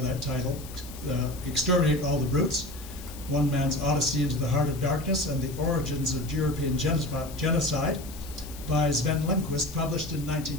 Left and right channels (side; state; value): left; noise; hiss, 16 dB below the sound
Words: title, Exterminate All the Brutes, One Man's Odyssey into the Heart of Darkness and the Origins of European Genocide by Sven Lindqvist, published in